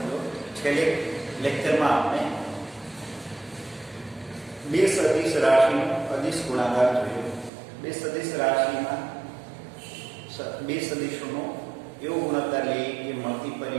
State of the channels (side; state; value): left; drops out; at 7.5 s